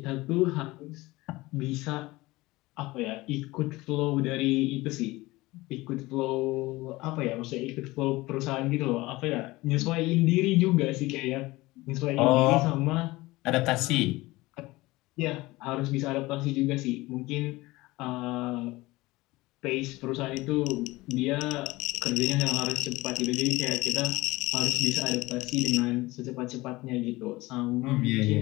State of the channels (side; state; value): right; quieter; 20.3 dB